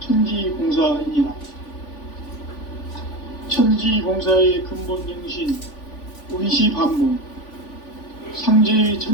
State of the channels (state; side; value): late; right; 3.5 ms